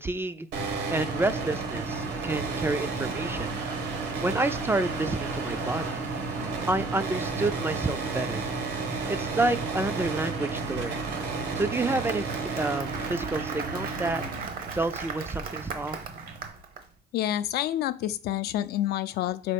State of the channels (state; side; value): normal; both; correlation 0.52